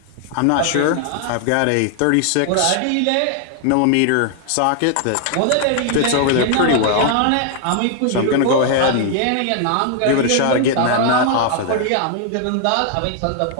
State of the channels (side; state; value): both; different; correlation 0.00